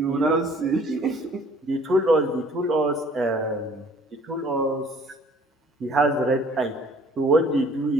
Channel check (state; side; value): normal; both; correlation 0.55